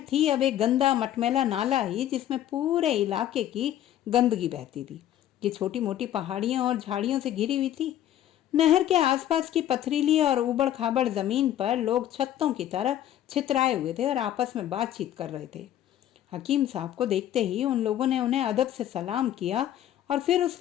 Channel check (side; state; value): right; quieter; 11.8 dB